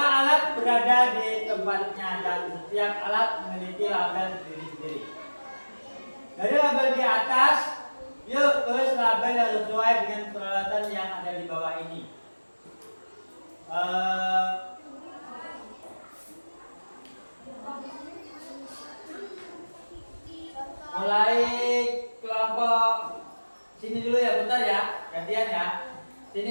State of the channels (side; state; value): both; inverted; correlation -1.00